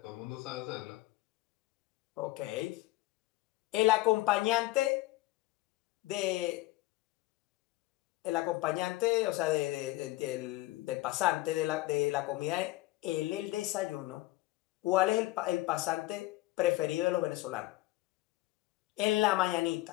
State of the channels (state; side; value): quieter; right; 18.7 dB